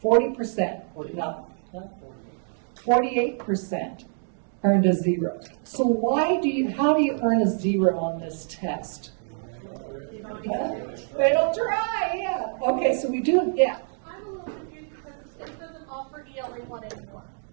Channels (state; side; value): silent; left; 61 dB below the other